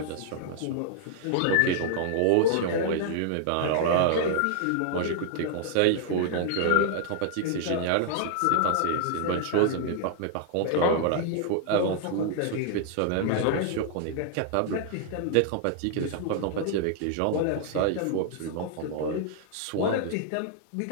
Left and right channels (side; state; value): both; different; correlation 0.00